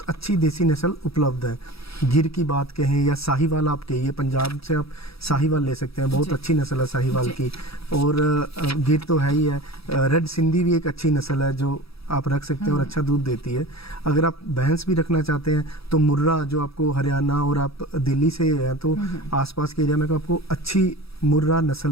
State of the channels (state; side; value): late; right; 0.77 ms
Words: अच्छी देसी नस्ल उपलब्ध है। गिर की बात कहें या साहिवाल, आप कहिए, पंजाब से आप साहिवाल ले सकते हैं, बहुत अच्छी नस्ल है साहिवाल की। और गिर तो है ही है, रेड सिंधी भी एक अच्छी नस्ल है जो आप रख सकते हैं और अच्छा दूध देती है। अगर आप भैंस भी रखना चाहते हैं तो मुर्रा, जो आपको हरियाणा और आप दिल्ली से हैं तो आसपास के एरिया में आपको अच्छी मुर्रा